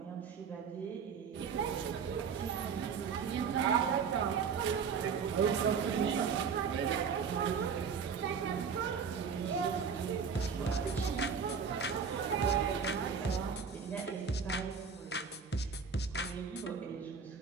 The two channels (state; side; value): quieter; left; 6.2 dB